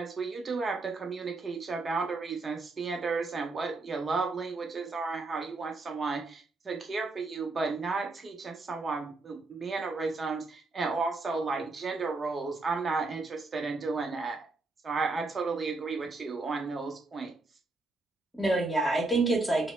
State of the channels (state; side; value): quieter; left; 3.3 dB